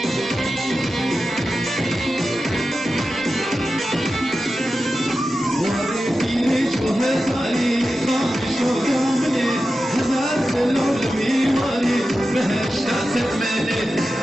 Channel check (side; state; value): both; normal; correlation 0.92